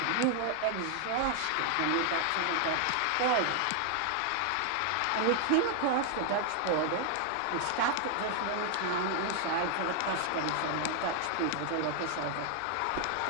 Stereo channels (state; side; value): different; both; correlation 0.00